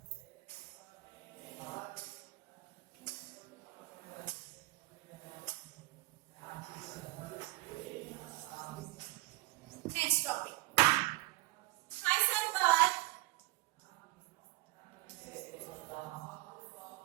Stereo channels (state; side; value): quieter; left; 20.4 dB